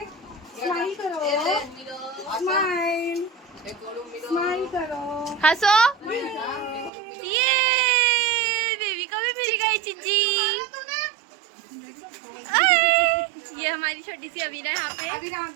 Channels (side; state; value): left; drops out; at 6.9 s